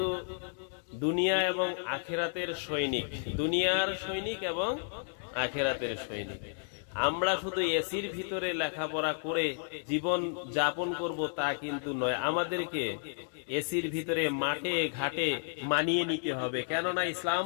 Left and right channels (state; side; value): silent; right; 56 dB below the other